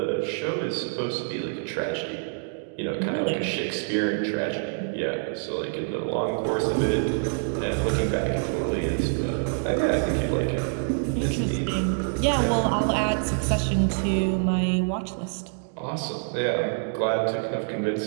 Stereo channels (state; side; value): silent; left; 61 dB below the other